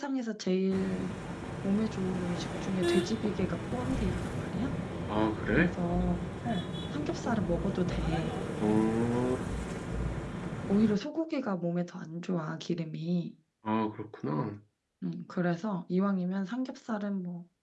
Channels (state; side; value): identical; both; correlation 1.00